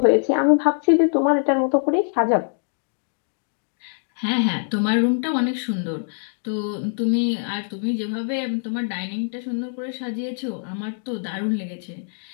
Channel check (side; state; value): right; silent; digital silence